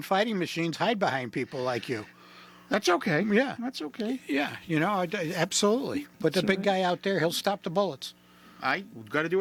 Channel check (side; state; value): both; identical; correlation 1.00